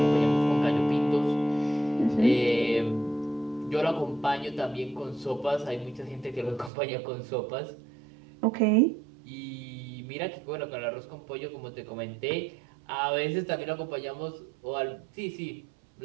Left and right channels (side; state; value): left; drops out; at 6.7 s